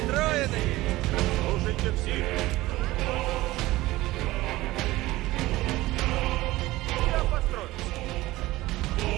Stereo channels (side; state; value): left; quieter; 18.1 dB